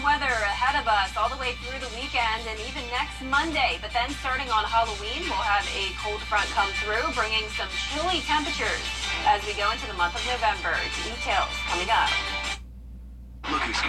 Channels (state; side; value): identical; both; correlation 1.00